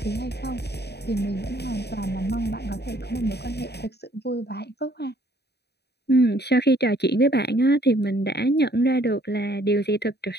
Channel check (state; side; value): late; right; 0.48 ms